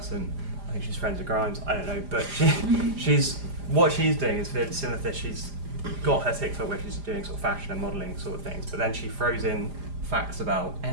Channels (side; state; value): left; late; 4.9 ms